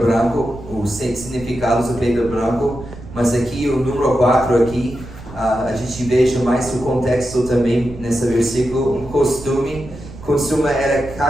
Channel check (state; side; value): noise; right; rumble, 15 dB below the sound